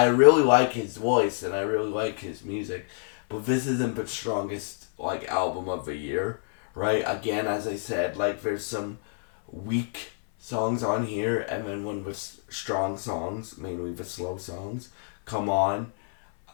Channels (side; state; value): right; silent; 60 dB below the other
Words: really like his voice and I really like his music, but this isn't the strongest like album of the year, right? Again, as I said, like there's some weak songs on here, and then when the strong songs, mainly the slow songs, come on.